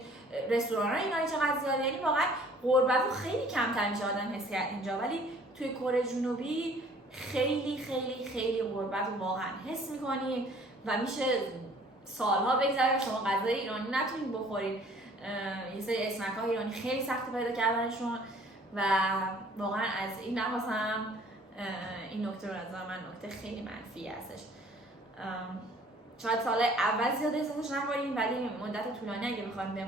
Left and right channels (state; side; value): normal; both; correlation 0.55